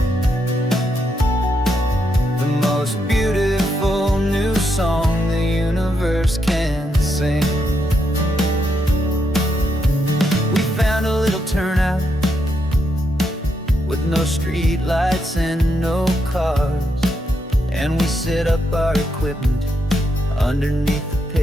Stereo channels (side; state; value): both; normal; correlation 0.80